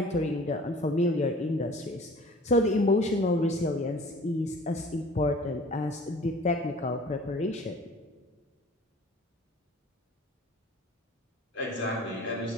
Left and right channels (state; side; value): normal; both; correlation 0.47